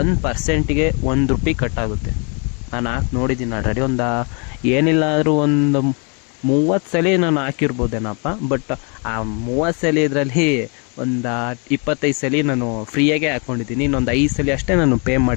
₹1 ಕಟ್ಟಾಗುತ್ತೆ. ನಾನು ಹಾಕಿ ನೋಡಿದ್ದೀನಿ ಆಲ್ರೆಡಿ. ಏನಿಲ್ಲ ಆದರೂ ಒಂದು 30 ಸಲ ನಾನು ಹಾಕಿರ್ಬೋದೇನಪ್ಪ. ಬಟ್ ಆ 30 ಸಲ ಇದರಲ್ಲಿ ಒಂದು 25 ಸಲ ನಾನು ಫ್ರೀಯಾಗೆ ಹಾಕ್ಕೊಂಡಿದ್ದೀನಿ. ಇನ್ನೊಂದು 5 ಸಲ ಅಷ್ಟೇ ನಾನು ಪೇ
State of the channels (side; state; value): right; quieter; 35.6 dB